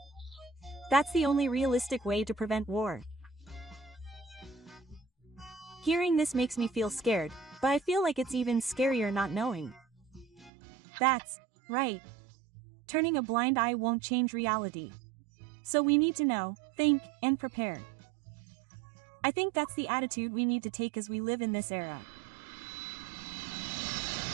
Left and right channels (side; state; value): left; drops out; at 10.5 s